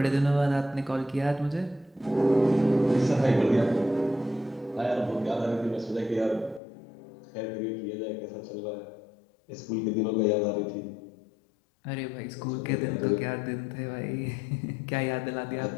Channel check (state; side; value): drops out; right; at 6.6 s